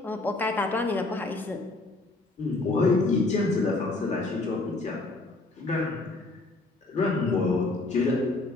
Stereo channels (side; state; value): right; quieter; 3.0 dB